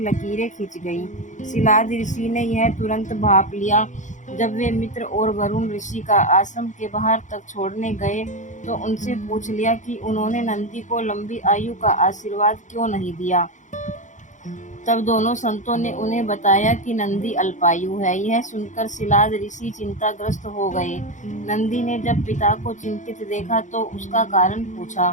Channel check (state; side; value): late; right; 0.36 ms